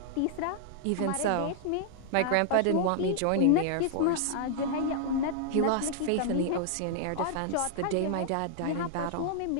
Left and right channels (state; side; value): different; both; correlation -0.01